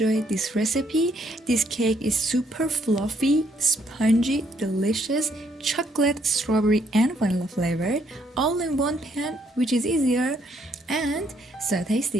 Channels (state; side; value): normal; both; correlation 0.70